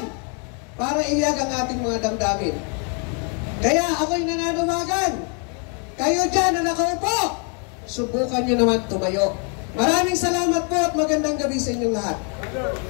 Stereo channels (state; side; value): quieter; right; 39.1 dB